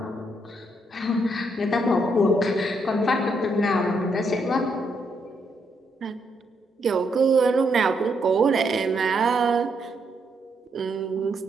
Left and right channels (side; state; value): both; normal; correlation 0.76